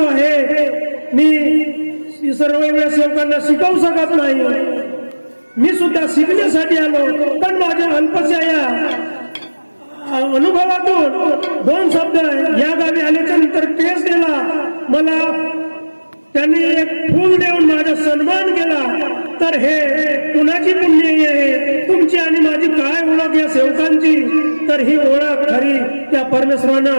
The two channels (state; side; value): inverted; both; correlation -1.00